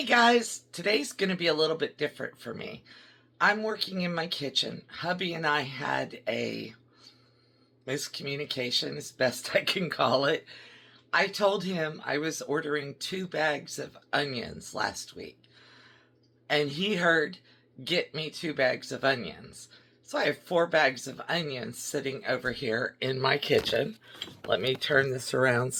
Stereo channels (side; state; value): both; identical; correlation 1.00